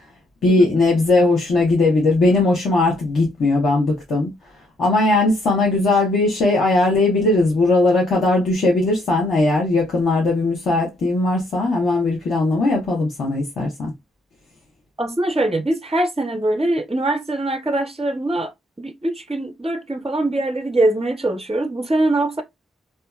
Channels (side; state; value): both; normal; correlation 0.71